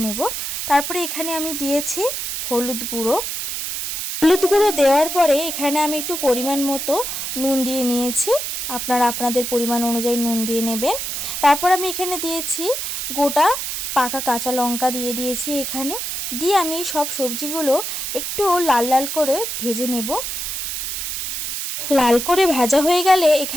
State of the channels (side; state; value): right; noise; hiss, 4 dB below the sound